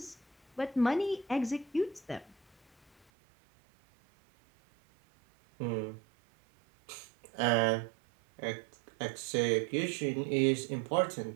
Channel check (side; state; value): left; drops out; at 3.1 s